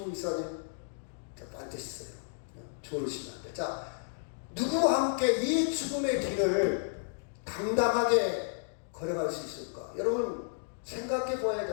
이사님 반드시 있어요. 조르시면 안 돼. 자, 누구와 함께 이 죽음의 길을 당당하게 걸어갈 수 있을까? 여러분 생각해 보아야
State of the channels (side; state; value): right; silent; digital silence